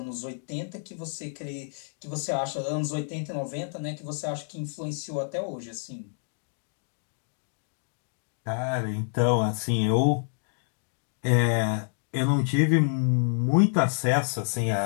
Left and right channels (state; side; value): silent; right; digital silence